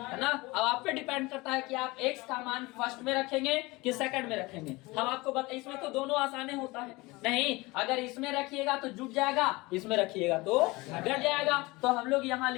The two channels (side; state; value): right; quieter; 22.7 dB